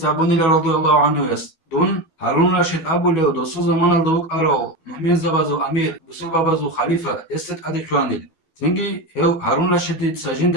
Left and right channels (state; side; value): late; right; 11 ms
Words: تعبوني رضي الله عنه يس دون هارون رشيد أبو ليو دوسو زمان الدوك أرو مؤمن زبازو أمير بسو بابازو خليفة يستد أدي كوانيل تنجي هو هارون رشيد سجند